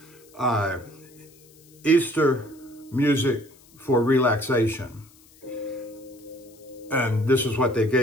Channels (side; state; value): left; noise; hiss, 27 dB below the sound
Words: Easter music for relaxation. And this is what they